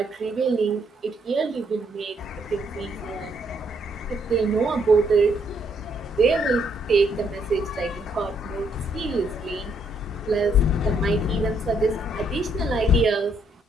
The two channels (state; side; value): normal; both; correlation 0.71